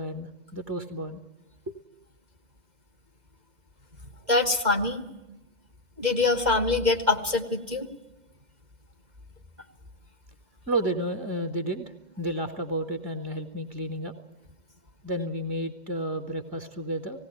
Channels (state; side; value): late; left; 2.1 ms